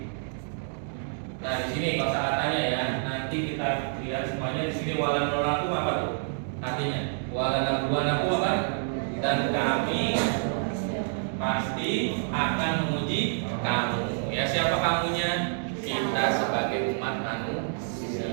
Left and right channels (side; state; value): left; silent; digital silence